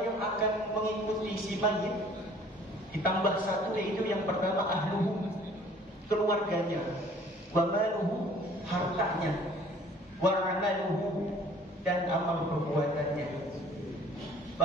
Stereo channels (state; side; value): normal; both; correlation 0.53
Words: yang akan mengikuti si mayit, ditambah 1 yaitu yang pertama ahluhu, keluarganya, wa maluhu, hartanya, wa amaluhu, dan amal perbuatannya.